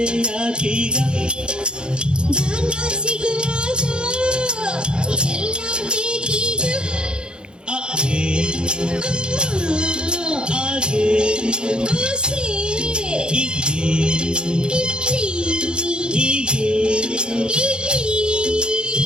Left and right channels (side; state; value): left; late; 0.050 ms